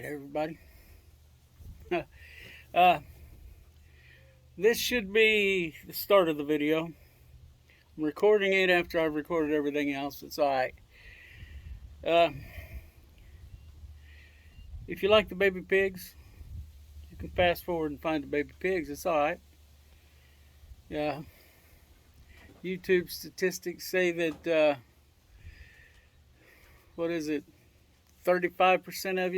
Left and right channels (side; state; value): both; identical; correlation 1.00